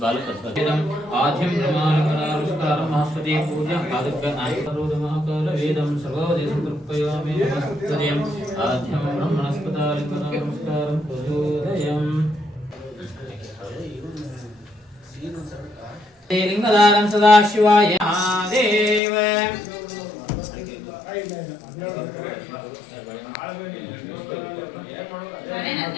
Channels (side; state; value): right; drops out; at 19.0 s